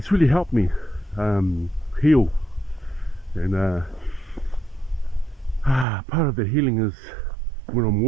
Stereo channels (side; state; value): left; drops out; at 5.9 s